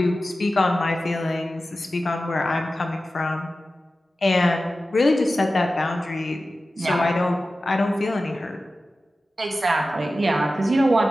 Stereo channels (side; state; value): both; normal; correlation 0.94